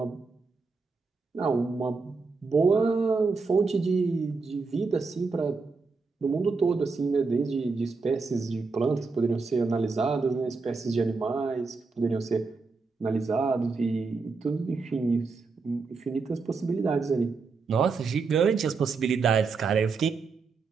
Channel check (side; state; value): left; quieter; 4.4 dB